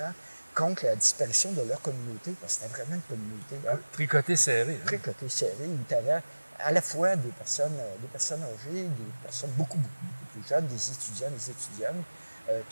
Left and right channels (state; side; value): inverted; both; correlation -1.00